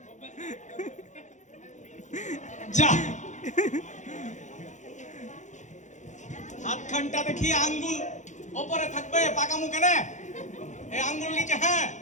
যা হাতখানটা দেখি আঙ্গুল ওপরে থাকবে, পাকামু কেন? এই আঙ্গুল নিচে। হ্যাঁ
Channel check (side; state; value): right; late; 0.35 ms